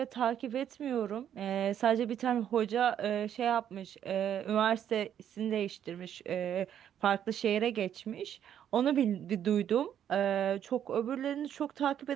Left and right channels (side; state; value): left; quieter; 9.7 dB